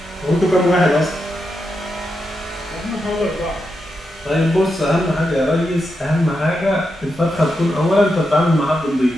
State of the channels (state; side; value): normal; both; correlation 0.86